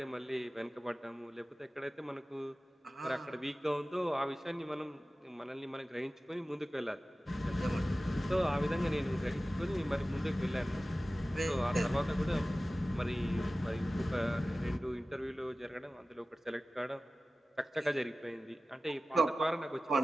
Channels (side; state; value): both; normal; correlation 0.96